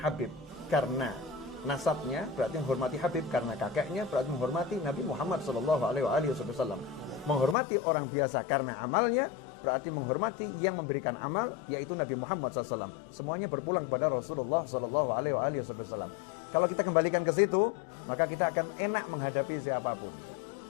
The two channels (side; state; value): right; drops out; at 7.6 s